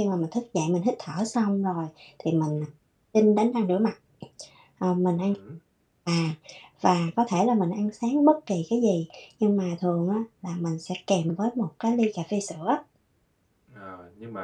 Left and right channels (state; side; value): identical; both; correlation 1.00